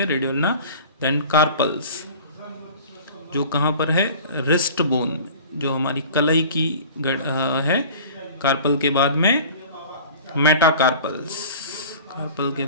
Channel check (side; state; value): both; inverted; correlation -0.41